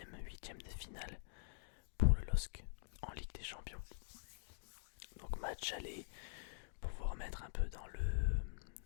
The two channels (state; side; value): silent; right; digital silence